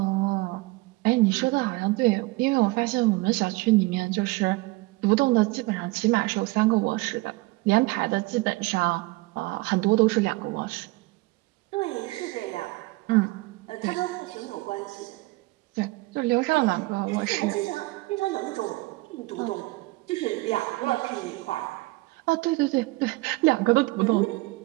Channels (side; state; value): left; quieter; 22.4 dB